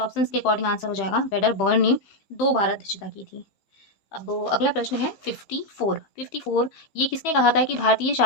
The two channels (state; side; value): late; right; 15 ms